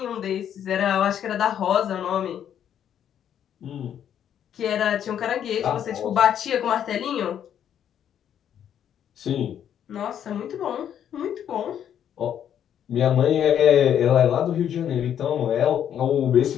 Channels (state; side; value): quieter; right; 9.5 dB